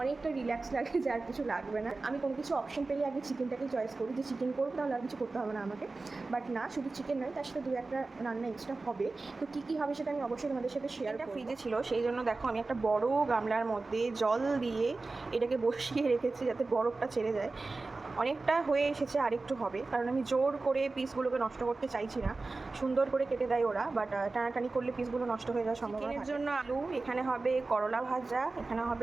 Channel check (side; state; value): left; quieter; 3.6 dB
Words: অনেকটা রিল্যাক্স লাগে যে আর কিছু লাগবে না। আমি কোনো কিছু অপশন পেলে আগে চিকেনটাকেই চয়েস করি যে চিকেন করবো, তাহলে আর কিছু করতে হবে না আমাকে। বাট না, শুধু চিকেন নয়, তার সাথে 2-1টা রান্না এক্সট্রা হবে। তো কী কী হবে সেটা আমি অবশ্যই তোমাদের সাথে শেয়ার করব। ফ্রিজে ছিল, সেই জন্য দেখো আমি একটা বড় গামলার মধ্যে জল দিয়ে এটাকে বসিয়ে রেখেছি যাতে বরফটা ছেড়ে যায়। অনেকটা হয়ে এসেছে, আরেকটু হবে, কারণ আমি জোর করে পিসগুলোকে নষ্ট করতে চাইছি না। সুন্দর করে কেটে দেয় ওরা, বাট টানাটানি করলে পিসগুলো নষ্ট হয়ে যাওয়ার সম্ভাবনা। এর জন্য আলু, এখানে হবে করলা ভাজা, এখানে